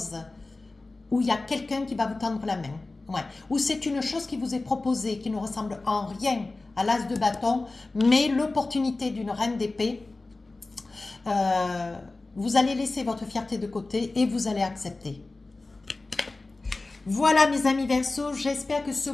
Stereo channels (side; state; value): right; quieter; 3.3 dB